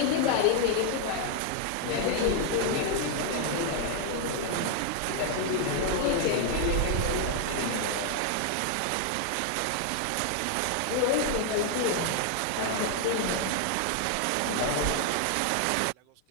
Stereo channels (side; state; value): both; different; correlation 0.00